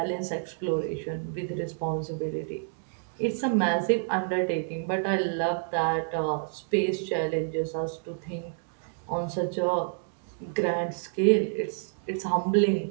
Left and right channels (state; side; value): silent; left; digital silence